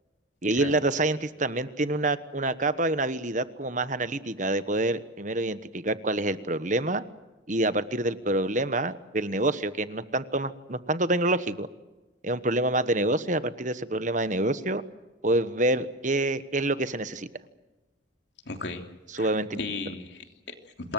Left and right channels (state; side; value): normal; both; correlation 0.20